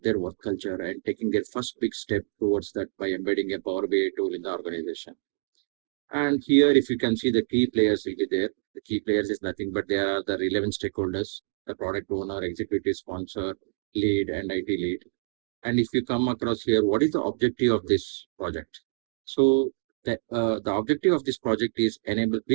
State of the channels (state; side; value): silent; left; digital silence